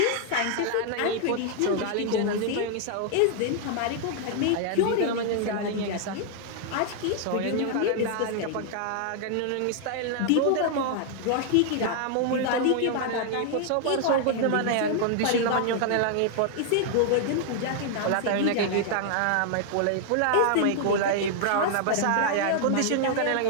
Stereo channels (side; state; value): both; different; correlation 0.00